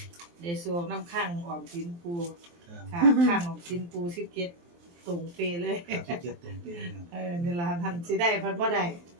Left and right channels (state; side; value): late; left; 23 ms